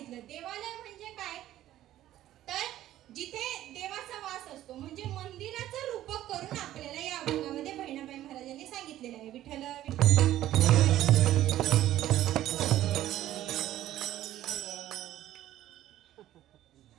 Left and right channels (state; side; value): quieter; left; 13.5 dB